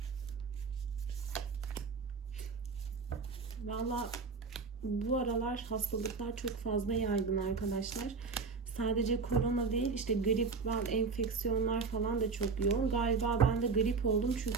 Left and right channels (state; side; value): quieter; left; 4.7 dB